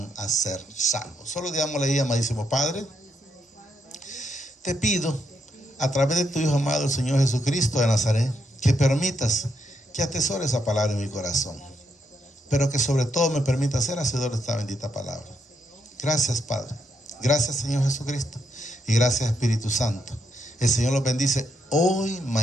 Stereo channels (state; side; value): normal; both; correlation 0.79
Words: a ser salvos. Solo digámosle ahí, amadísimo Padre, te pido a través de tu Hijo amado, el Señor Jesucristo de Nazaret, que permitas que atesore esa palabra en mi corazón, pero que sobre todo me permita ser hacedor de esta bendita palabra. Gracias, Padre. Gracias, Señor Jesucristo. Y gracias, Espíritu Santo. El Señor los bendice hoy,